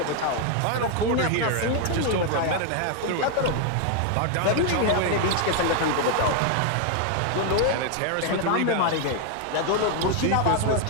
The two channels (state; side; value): different; both; correlation 0.01